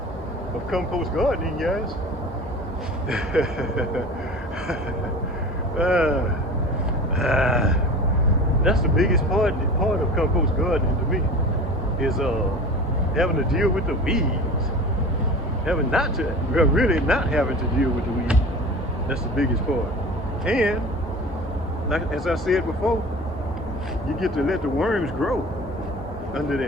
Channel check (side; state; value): both; normal; correlation 0.37